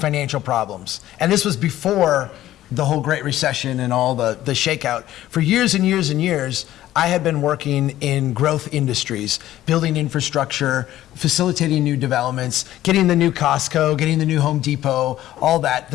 problems. And this was before the whole Great Recession and all the shakeout. For years and years and years, I had been working in growth industries, building infrastructure, facilitating new developments, getting the new Costco, getting the new Home Depot, all that.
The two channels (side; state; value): right; quieter; 13.9 dB